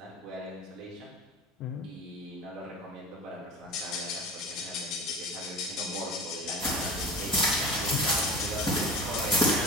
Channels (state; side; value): normal; both; correlation 0.33